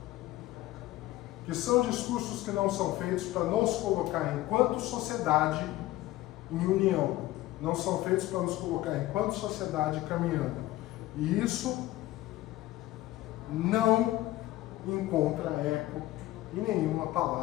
que que são discursos que não são feitos para nos colocar enquanto sociedade em união, não são feitos para nos colocar enquanto sociedade caminhando. E isso não encontra eco em nenhuma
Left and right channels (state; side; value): quieter; right; 16.5 dB